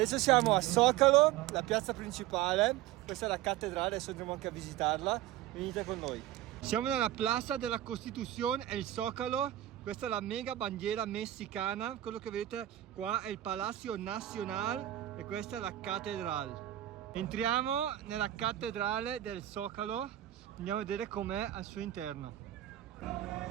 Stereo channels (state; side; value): quieter; left; 13.5 dB